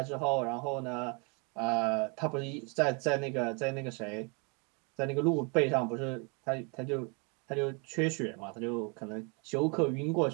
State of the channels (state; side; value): quieter; left; 33.7 dB